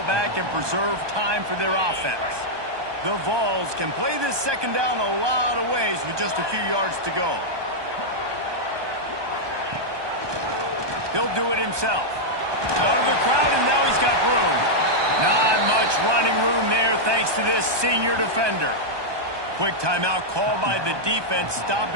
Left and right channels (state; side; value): late; left; 1.2 ms